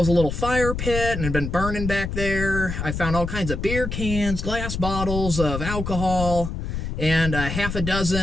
a little fire pit and had been burning back there. I found all kinds of beer cans, glass bottles of alcohol, and half a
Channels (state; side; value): noise; left; rumble, 4 dB below the sound